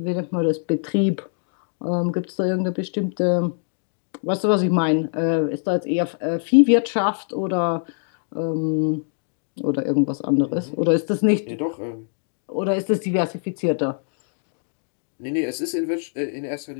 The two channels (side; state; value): right; silent; digital silence